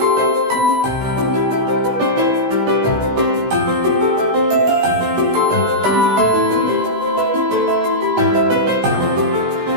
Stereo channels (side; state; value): left; late; 16 ms